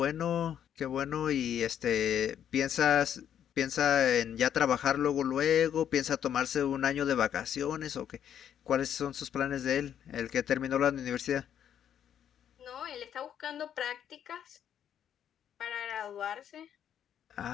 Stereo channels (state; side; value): quieter; right; 9.5 dB